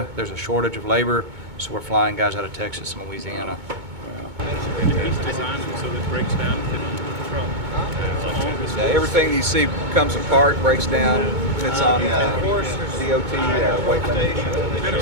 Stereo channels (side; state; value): left; late; 2.2 ms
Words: there's a shortage of labor, so we're flying guys out of Texas and Louisiana. He's designed them so that it breaks down and fit on the truck. Yeah, everything you see comes apart, breaks down, fits on DOT weight limit,